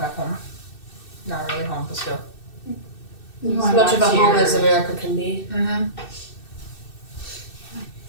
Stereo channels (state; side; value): late; right; 2.6 ms